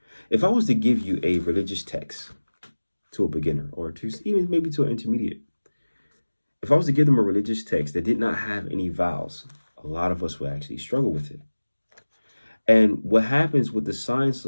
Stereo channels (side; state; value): both; inverted; correlation -1.00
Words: If I was to give you a religious text to a beginner or to even maybe to an intermediate, if I was to give them a religious text that did not have any vowels, a lot of us would actually struggle with it. And what happens with the science